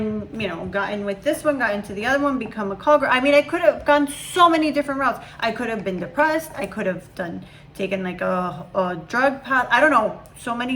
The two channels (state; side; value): identical; both; correlation 1.00